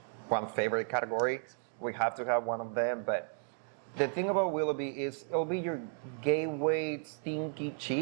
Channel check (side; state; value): left; silent; 55 dB below the other